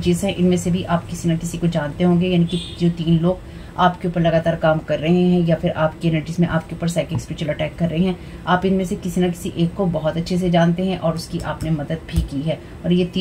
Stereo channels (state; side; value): identical; both; correlation 1.00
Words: हैं, इनमें से भी आप किसी न किसी को जानते होंगे, यानी कि जो 3 लोग आपके ऊपर लगातार काम कर रहे हैं या फिर आपकी एनर्जीज में आपके ऊपर साइकिक स्पिरिचुअल अटैक कर रहे हैं, आप इनमें से किसी न किसी एक को बहुत अच्छे से जानते हैं और उसकी आपने मदद भी की है। और ये